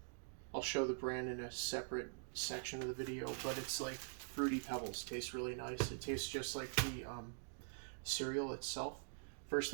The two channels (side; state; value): left; silent; digital silence